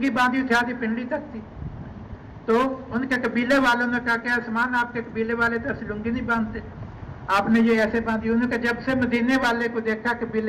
باندھی تھی آدھی پنڈلی تک تھی، تو ان کے قبیلے والوں نے کہا کہ عثمان آپ کے قبیلے والے تو ایسے لنگی نہیں باندھتے، آپ نے یہ ایسے باندھی۔ انہوں نے کہا جب سے مدینے والے کو دیکھا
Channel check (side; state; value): both; identical; correlation 1.00